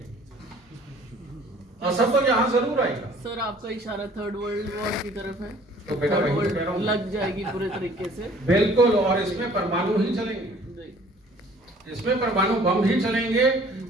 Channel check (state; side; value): normal; both; correlation 0.54